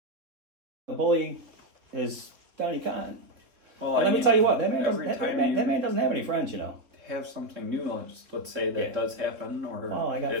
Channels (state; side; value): late; left; 3.6 ms